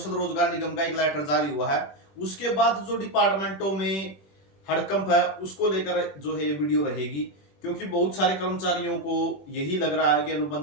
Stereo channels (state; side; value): late; right; 21 ms